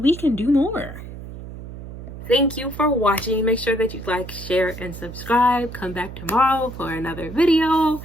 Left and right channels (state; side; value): noise; right; hum, 12 dB below the sound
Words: we can do more. Thank you for watching. Make sure that you like, share, and subscribe. Come back tomorrow for another video.